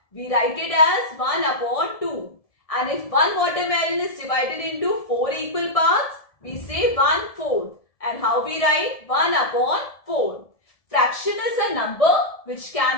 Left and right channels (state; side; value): late; right; 1.7 ms